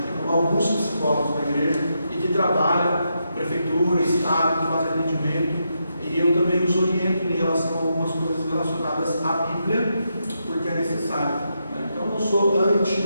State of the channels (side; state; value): both; inverted; correlation -0.83